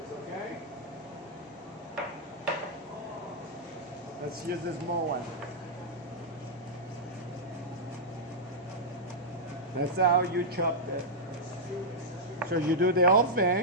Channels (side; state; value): both; normal; correlation -0.07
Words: okay? Let's use the small one. That's how you chop it. So you do the whole